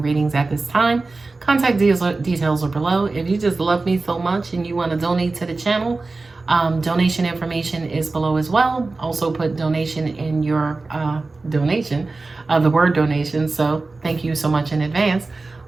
readings at this time. Contact details are below. If you just love me so much and you want to donate to the channel, donation information is below as well. Also put donation in your donation, the word donation. So thank you so much in advance.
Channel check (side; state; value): left; quieter; 3.6 dB